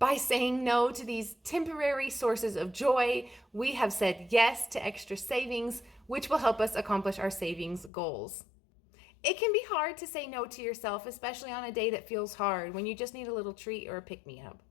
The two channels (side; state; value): right; drops out; at 7.9 s